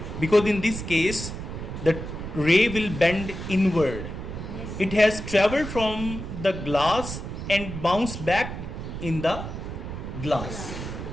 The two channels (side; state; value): right; noise; rumble, 7 dB below the sound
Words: Because in this case, the ray will bend inward. Yes. It has traveled from the glass and bounced back in the glass.